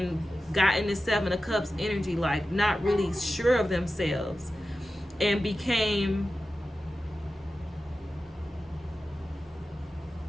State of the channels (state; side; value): normal; both; correlation 0.93